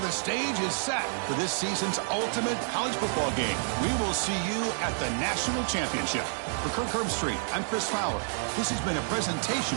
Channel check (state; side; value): silent; left; digital silence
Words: stage is set for this season's ultimate college football game. We will see you at the National Championship. For Kirk Herbstreit, I'm Chris Fowler. This has been a